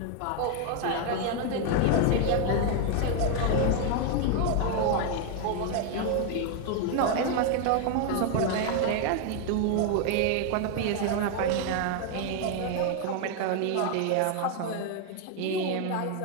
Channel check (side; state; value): both; different; correlation 0.00